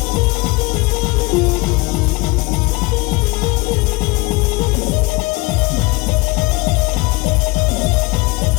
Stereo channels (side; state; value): right; quieter; 24.1 dB